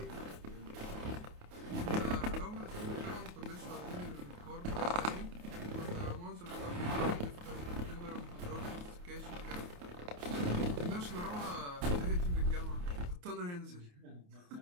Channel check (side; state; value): left; late; 28 ms